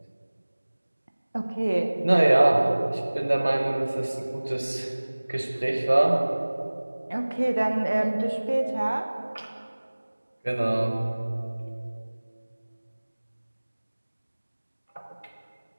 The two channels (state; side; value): inverted; both; correlation -1.00